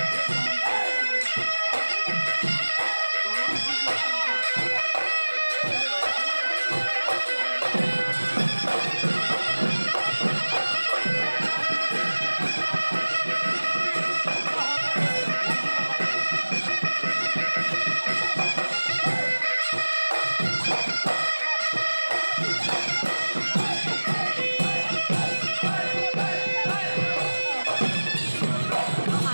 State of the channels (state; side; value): inverted; both; correlation -1.00